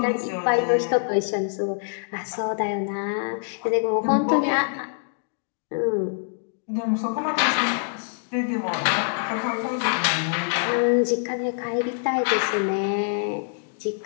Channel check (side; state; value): right; silent; digital silence